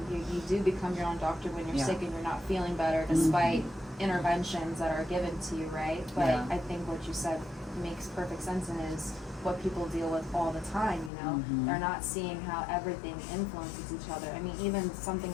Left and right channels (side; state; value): right; drops out; at 11.1 s